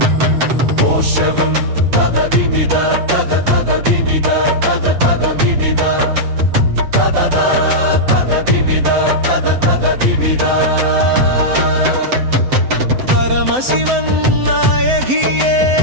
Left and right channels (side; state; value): left; late; 7.8 ms